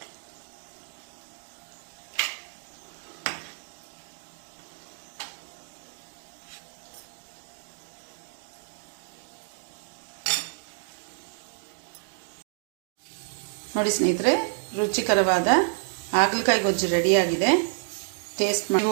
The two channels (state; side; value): silent; left; digital silence